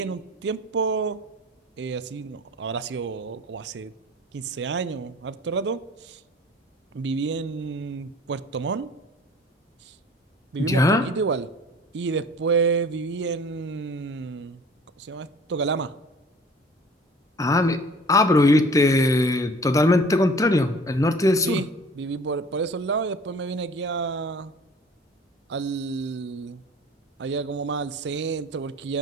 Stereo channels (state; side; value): normal; both; correlation 0.46